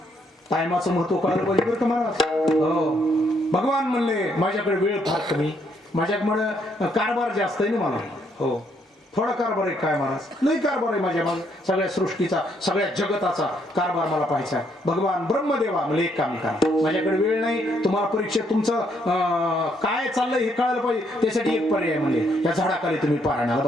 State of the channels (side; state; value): both; normal; correlation 0.72